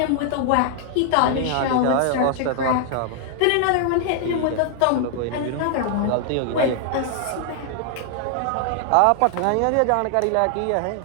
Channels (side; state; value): both; different; correlation 0.00